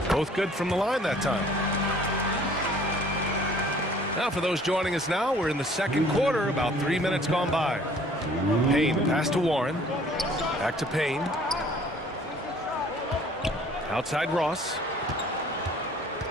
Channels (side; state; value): both; normal; correlation 0.54